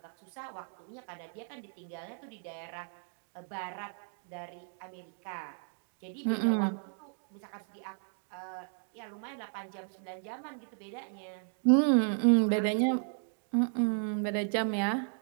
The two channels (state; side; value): silent; left; 55 dB below the other